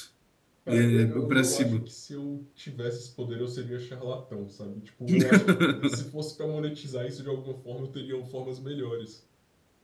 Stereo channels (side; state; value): both; identical; correlation 1.00